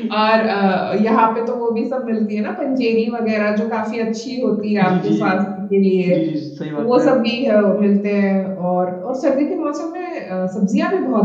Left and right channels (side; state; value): both; identical; correlation 1.00